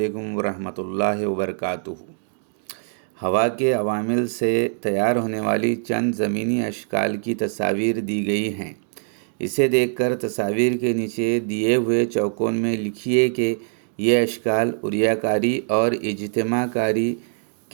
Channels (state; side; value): silent; left; digital silence